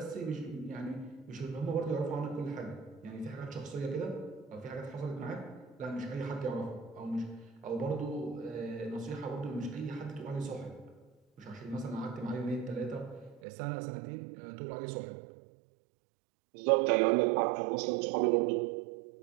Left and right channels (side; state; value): left; drops out; at 13.4 s